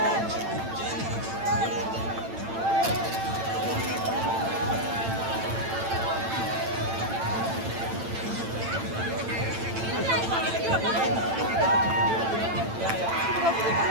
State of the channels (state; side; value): late; left; 8.9 ms